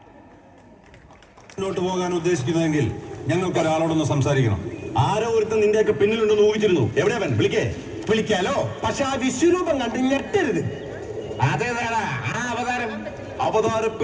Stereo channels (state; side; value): identical; both; correlation 1.00